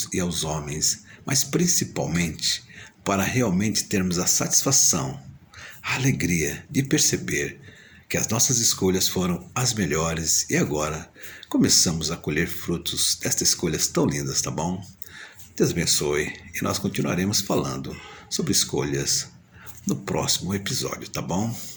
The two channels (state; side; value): identical; both; correlation 1.00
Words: e aos homens, mas principalmente para realmente termos a satisfação, a alegria de perceber que as nossas escolhas foram as melhores e agora começamos a colher frutos destas escolhas tão lindas, tá bom? Deus abençoe e nós continuaremos falando sobre escolhas no próximo episódio, tá bom?